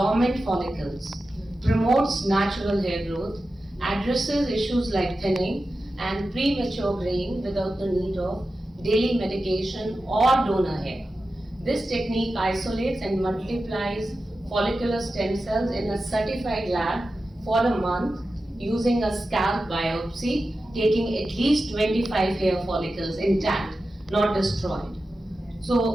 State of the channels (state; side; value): normal; both; correlation 0.93